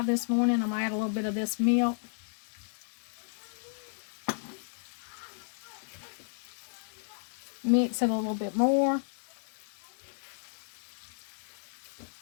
this morning. I'm going to add a little bit of this milk. Mix it a little bit more.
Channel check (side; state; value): right; silent; digital silence